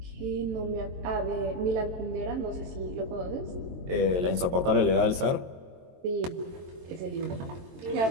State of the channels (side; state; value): left; late; 22 ms